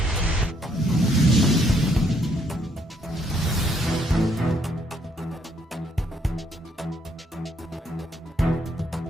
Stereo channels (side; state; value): both; normal; correlation 0.70